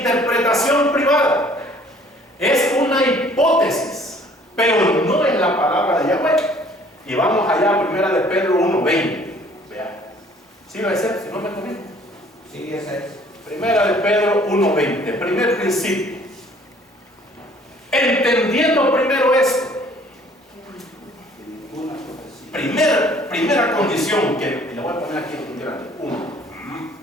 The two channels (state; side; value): normal; both; correlation 0.56